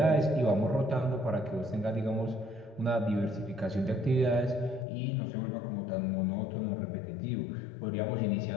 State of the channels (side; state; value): right; drops out; at 4.9 s